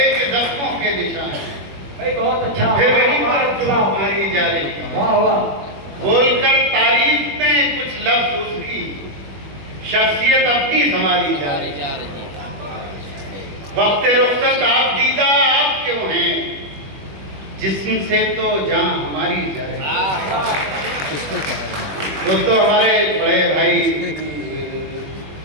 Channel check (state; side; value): late; left; 21 ms